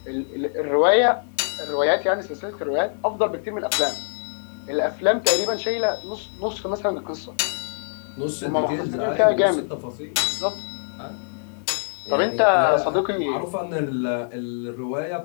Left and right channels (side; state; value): right; silent; digital silence